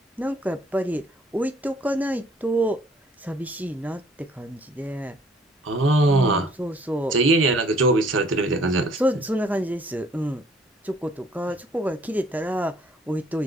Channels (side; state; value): both; normal; correlation 0.59